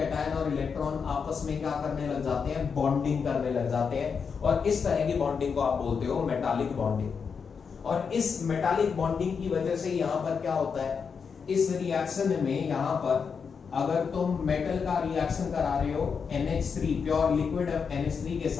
और इलेक्ट्रॉन आपस में क्या करने लग जाते हैं, बॉन्डिंग करने लग जाते हैं, और इस तरह की बॉन्डिंग को आप बोलते हो मेटालिक बॉन्डिंग। और इस मेटालिक बॉन्डिंग की वजह से यहां पर क्या होता है, इस रिएक्शन में यहां पर अगर तुम मेटल का रिएक्शन करा रहे हो NH3 प्योर लिक्विड NH3 के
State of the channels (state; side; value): quieter; right; 6.0 dB